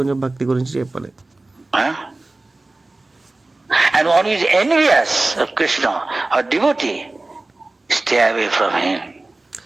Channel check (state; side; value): quieter; left; 3.0 dB